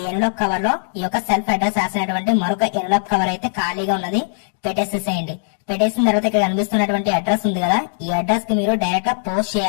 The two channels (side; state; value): right; silent; 66 dB below the other